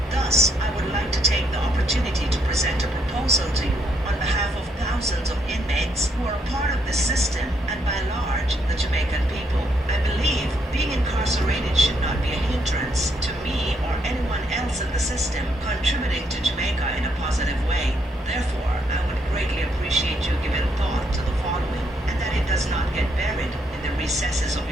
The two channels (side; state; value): both; normal; correlation 0.74